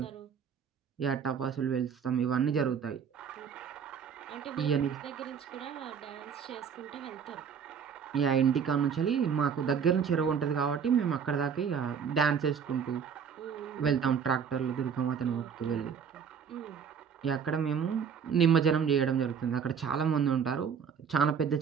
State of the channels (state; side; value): quieter; left; 7.0 dB